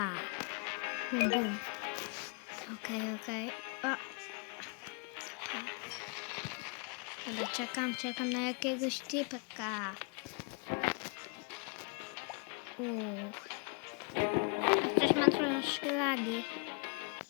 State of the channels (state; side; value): quieter; right; 36.3 dB